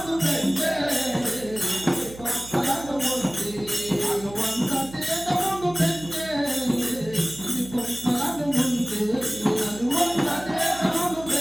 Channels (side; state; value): right; noise; hum, 16 dB below the sound